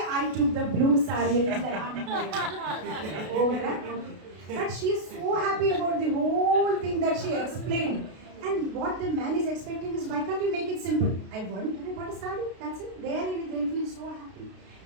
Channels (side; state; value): left; late; 32 ms